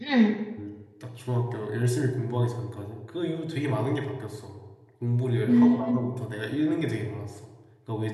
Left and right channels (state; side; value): identical; both; correlation 1.00